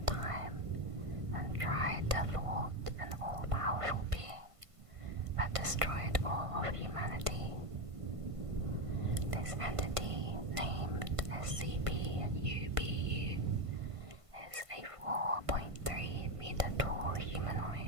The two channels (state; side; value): late; left; 1.5 ms